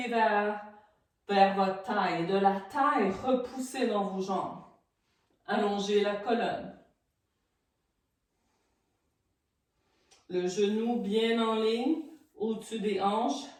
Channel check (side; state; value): both; identical; correlation 1.00